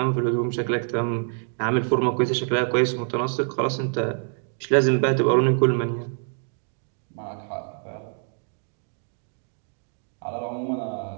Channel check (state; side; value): silent; left; 57 dB below the other